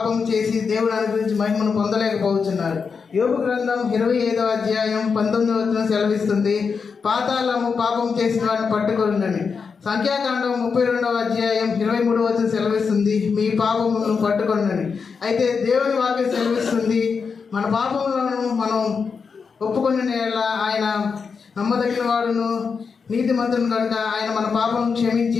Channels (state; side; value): quieter; right; 5.5 dB